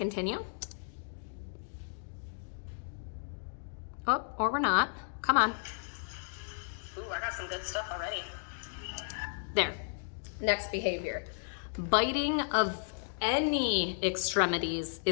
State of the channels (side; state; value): right; silent; digital silence